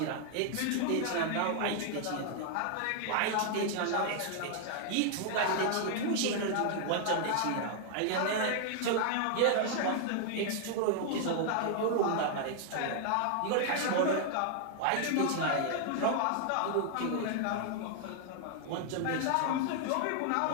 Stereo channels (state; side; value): different; both; correlation 0.00